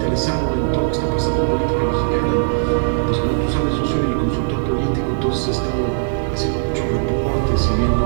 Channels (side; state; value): left; silent; digital silence